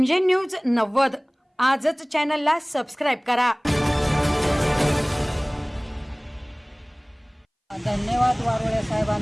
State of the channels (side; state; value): both; identical; correlation 1.00